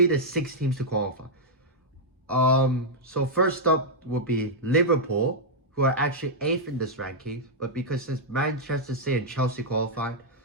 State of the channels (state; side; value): normal; both; correlation -0.05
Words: the 6 teams to qualify? So first up would be Liverpool, who are actually 8th in this ranking, but because since Manchester City and Chelsea qualified,